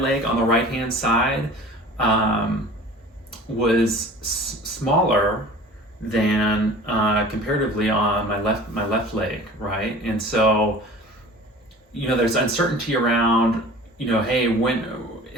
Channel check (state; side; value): normal; both; correlation 0.42